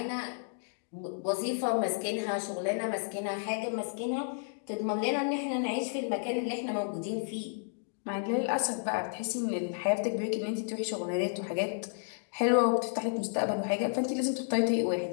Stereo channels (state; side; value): silent; right; digital silence